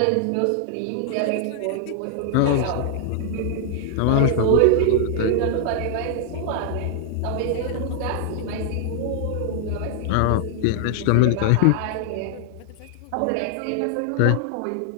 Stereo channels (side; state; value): both; different; correlation 0.00